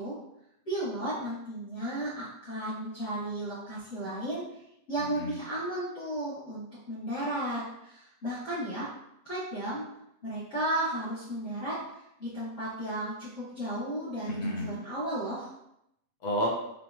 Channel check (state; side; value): late; right; 7.9 ms